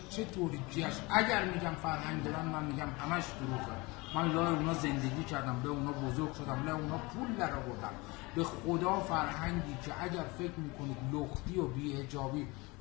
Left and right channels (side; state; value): right; quieter; 24.6 dB